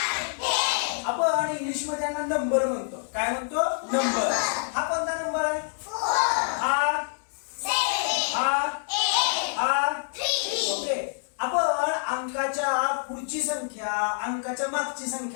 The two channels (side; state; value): right; silent; digital silence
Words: आपण इंग्लिश मध्ये यांना नंबर म्हणतो. काय म्हणतो? नंबर. हा कोणता नंबर आहे? ओके. आपण अंकाच्या पुढची संख्या, अंकाच्या मागची